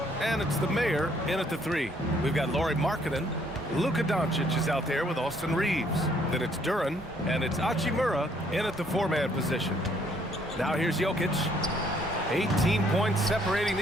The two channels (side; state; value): both; normal; correlation 0.66